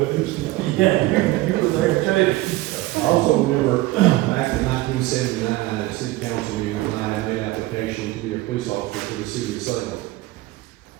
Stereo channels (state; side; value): quieter; left; 18.4 dB